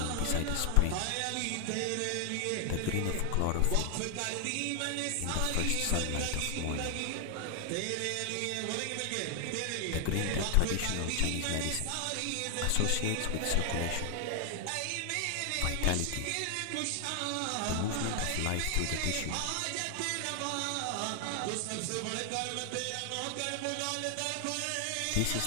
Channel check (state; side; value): different; both; correlation 0.00